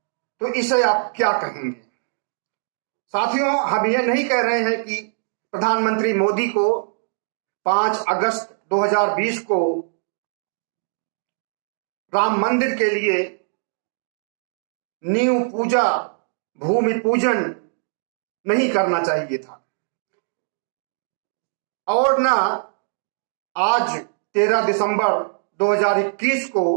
तो इसे आप क्या कहेंगे? साथियों, हम ये नहीं कह रहे हैं कि प्रधानमंत्री मोदी को 5 अगस्त 2020 को राम मंदिर के लिए नींव पूजा, भूमि पूजन नहीं करना चाहिए था, और ना आज 13 दिसंबर 2021 को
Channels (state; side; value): silent; left; digital silence